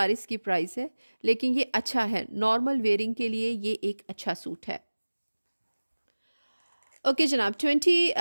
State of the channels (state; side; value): inverted; both; correlation -1.00